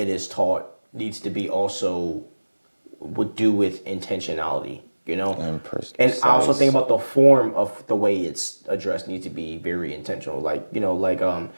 is taught needs to be also would do with intentionality, you know? And I also think about the form of the way it's addressed needs to be very intentional. Like, you know, like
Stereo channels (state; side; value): inverted; both; correlation -1.00